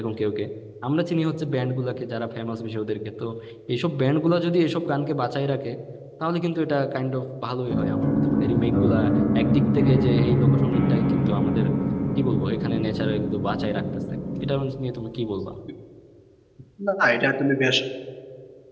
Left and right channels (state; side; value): identical; both; correlation 1.00